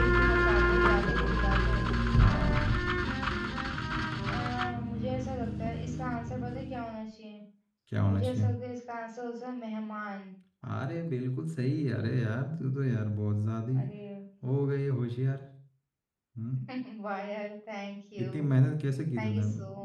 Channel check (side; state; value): both; identical; correlation 1.00